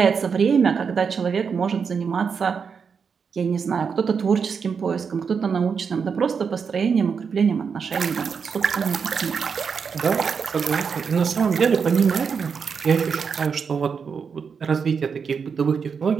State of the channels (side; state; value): left; quieter; 6.1 dB